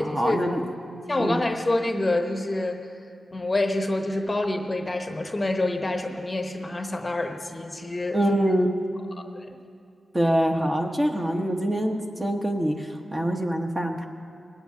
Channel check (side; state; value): both; normal; correlation 0.93